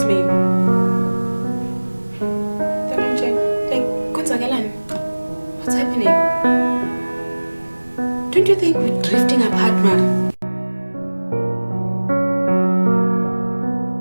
What's happening? Don't you think we're drifting apart, man?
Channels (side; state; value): both; inverted; correlation -1.00